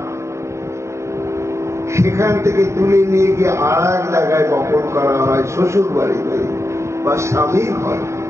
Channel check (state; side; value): late; left; 0.14 ms